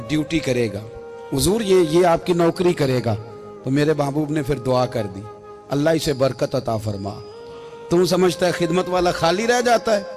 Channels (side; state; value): both; identical; correlation 1.00